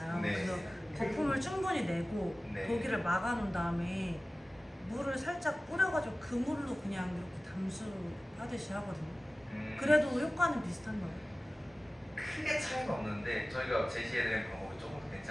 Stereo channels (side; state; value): both; normal; correlation 0.97